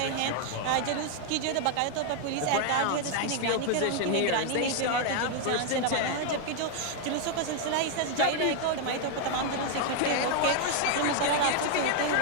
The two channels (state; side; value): different; both; correlation 0.00